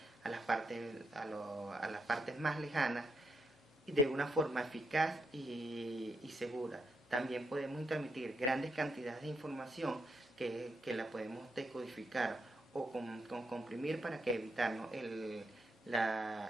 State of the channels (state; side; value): normal; both; correlation 0.80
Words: las partes más lejanas, y de una forma eficaz y segura. También podemos transmitir grandes cantidades de información que la podemos decodificar o comprimir para que evitarnos el